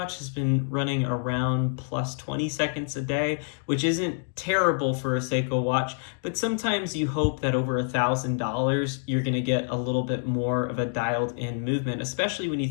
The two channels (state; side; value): silent; right; digital silence